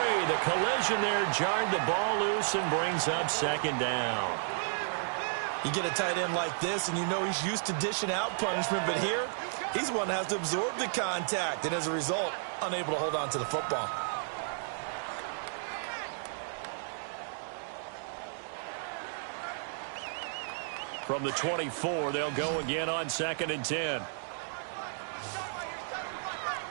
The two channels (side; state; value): left; silent; digital silence